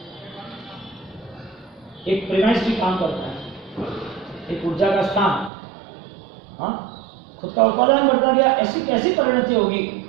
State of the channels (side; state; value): left; drops out; at 5.5 s